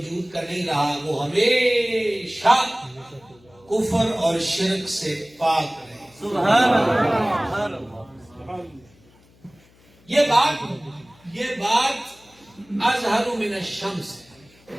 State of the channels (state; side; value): noise; left; hum, 29 dB below the sound